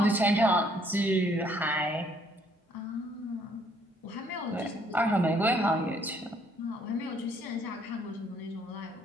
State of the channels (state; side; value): normal; both; correlation 0.65